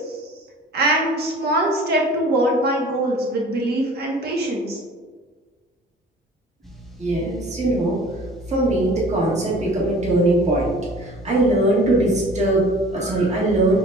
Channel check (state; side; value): normal; both; correlation 0.46